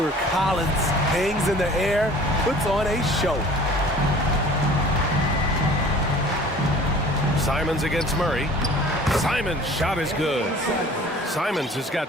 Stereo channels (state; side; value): normal; both; correlation 0.47